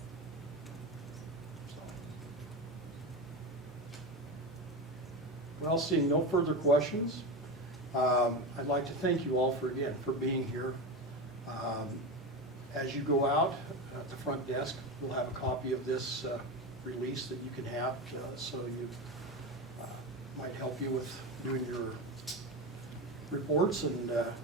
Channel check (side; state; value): both; normal; correlation 0.20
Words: So. Well, seeing no further questions, I'd like to thank you all for being here. As you go out, at the front desk, we'll have a copy of this release that you can have, so you, might help you with doing your reports and go